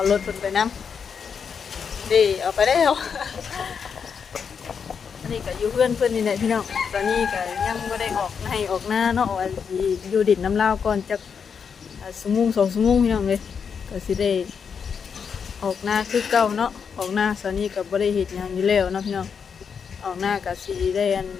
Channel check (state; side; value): quieter; right; 6.5 dB